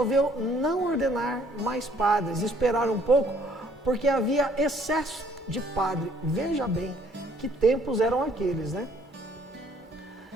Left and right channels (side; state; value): both; normal; correlation 0.61